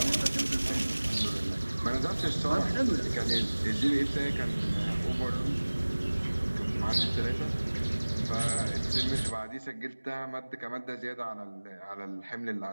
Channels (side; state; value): both; inverted; correlation -1.00